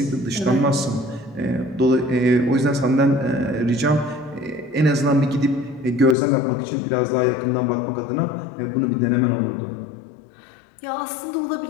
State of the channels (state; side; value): drops out; right; at 6.2 s